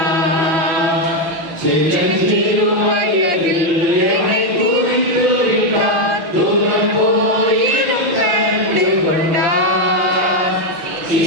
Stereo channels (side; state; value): left; late; 6.1 ms